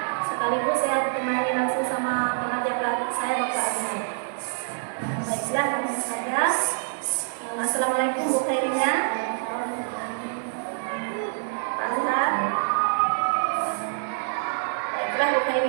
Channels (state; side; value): silent; left; digital silence